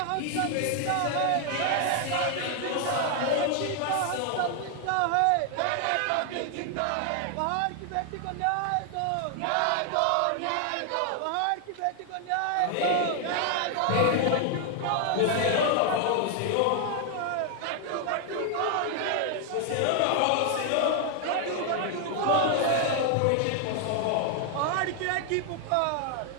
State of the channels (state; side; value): different; both; correlation 0.00